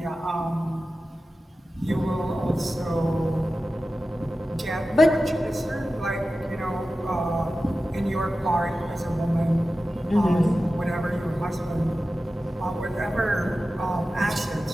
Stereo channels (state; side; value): normal; both; correlation 0.94